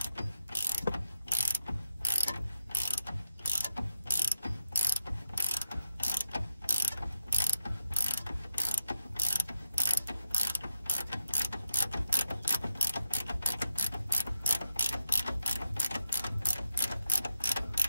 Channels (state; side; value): inverted; both; correlation -0.87